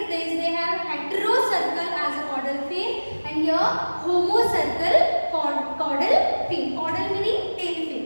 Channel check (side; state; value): both; inverted; correlation -1.00